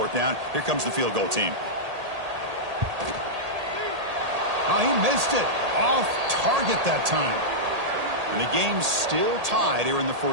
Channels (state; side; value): late; left; 1.8 ms